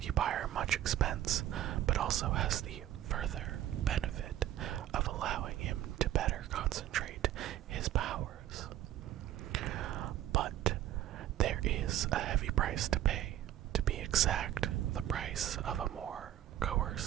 much expense, but also has the further benefit of allowing him to better concentrate his powers. But there is a heavy price to pay, to be exact, the price of a more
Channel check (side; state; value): left; quieter; 12.5 dB